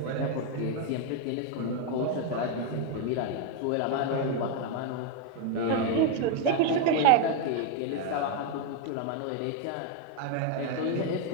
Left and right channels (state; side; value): different; both; correlation 0.01